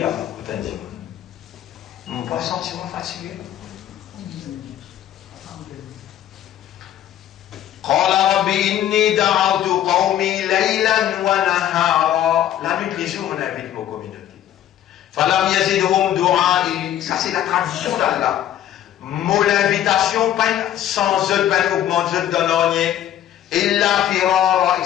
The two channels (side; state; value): right; quieter; 11.5 dB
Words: peut dire. Mon bois sentiment fatigué. قال رب إني دعوت قومي ليلا ونهارا. La nuit, les jours, on invite nos communautés. فلم يزدهم دعائي. Ça, c'est la tradition d'Allah. Mon invitation, sans eux, augmente, je donne rien. إلا فرارا,